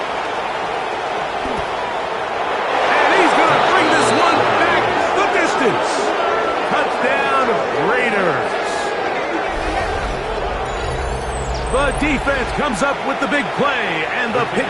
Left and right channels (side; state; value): both; identical; correlation 1.00